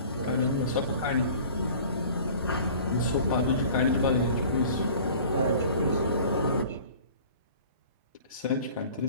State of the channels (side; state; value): both; inverted; correlation -0.46